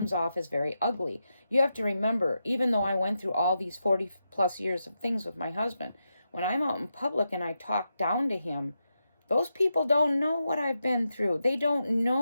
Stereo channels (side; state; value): both; inverted; correlation -0.86